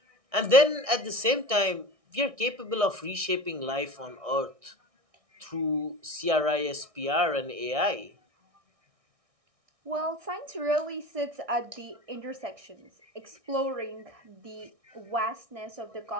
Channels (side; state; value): left; late; 1.6 ms